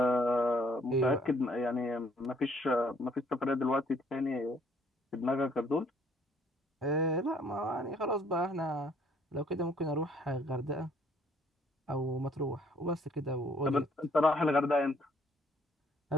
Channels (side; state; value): both; normal; correlation 0.63